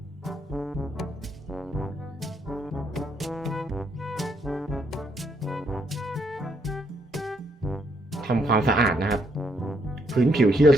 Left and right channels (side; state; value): both; normal; correlation 0.73